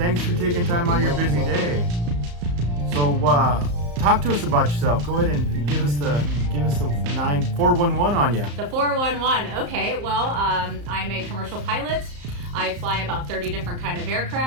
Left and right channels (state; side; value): late; left; 34 ms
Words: for taking time out of your busy day. So, talk to us about yourself. Go ahead and give us the 411 on you. The 411. Okay. Well, I'm a commercial pilot. I fly about 30 different kind of